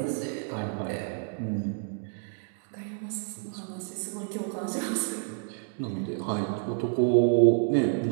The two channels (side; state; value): left; silent; 58 dB below the other